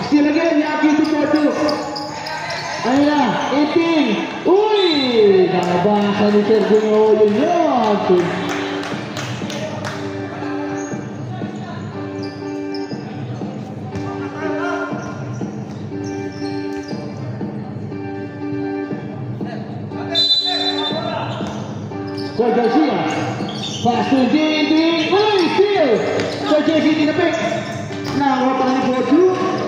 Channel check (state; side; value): identical; both; correlation 1.00